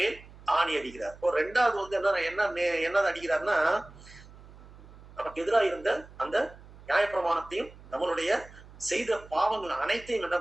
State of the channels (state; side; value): noise; right; hum, 20 dB below the sound